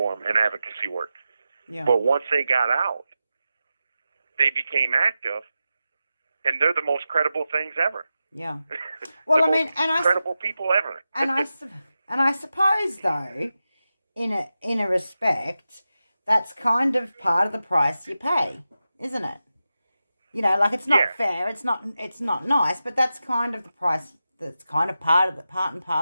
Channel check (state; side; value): inverted; both; correlation -0.92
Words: and advocacy work. Yeah. But once they got out, they became active, and they're the most credible things ever. Yeah. Well, I mean, credible people ever. and I suppose though, in a respect, that's kind of part of the price you pay, isn't it? Like it's not fair, it's not nice, but that's kind of the price. That's kind of part and